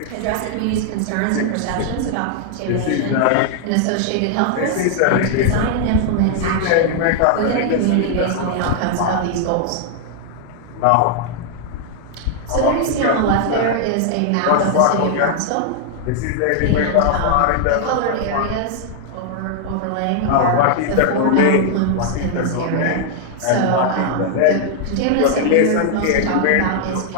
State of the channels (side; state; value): both; different; correlation 0.00